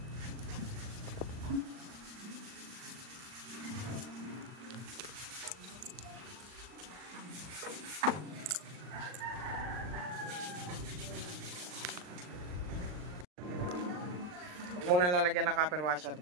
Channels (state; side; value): late; left; 39 ms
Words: Huwag muna lalagyan ng copper washer,